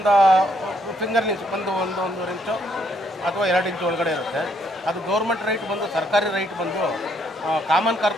ಫಿಂಗರ್ ಇಂಚ್ ಒಂದೂವರೆ ಇಂಚು ಅಥವಾ 2 ಇಂಚು ಒಳಗಡೆ ಇರುತ್ತೆ. ಅದು ಗೌರ್ಮೆಂಟ್ ರೈಟ್ ಬಂದು, ಸರ್ಕಾರಿ ರೈಟ್ ಬಂದು ಕಾಮನ್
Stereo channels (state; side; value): normal; both; correlation 0.71